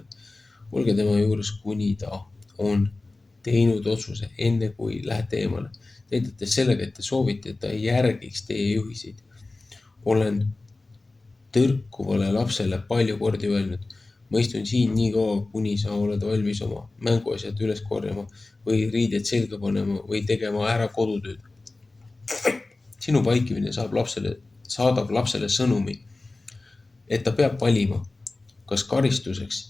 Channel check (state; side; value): quieter; right; 3.2 dB